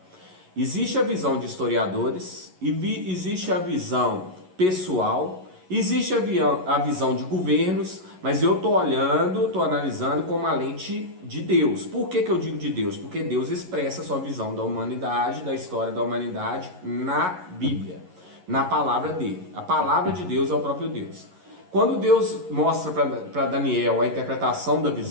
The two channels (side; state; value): left; late; 11 ms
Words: Existe a visão de historiadores, existe a visão pessoal, existe a visão de governos, mas eu estou olhando, estou analisando com uma lente de Deus. Por que eu digo de Deus? Porque Deus expressa a sua visão da humanidade, da história da humanidade na Bíblia, na palavra dele. A palavra de Deus é o próprio Deus. Quando Deus mostra para Daniel a interpretação da